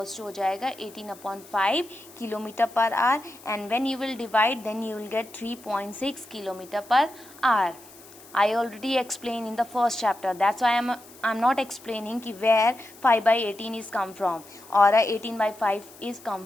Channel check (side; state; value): left; noise; hiss, 22 dB below the sound